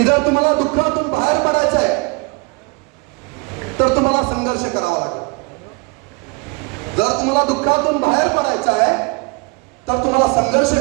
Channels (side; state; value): left; quieter; 29.8 dB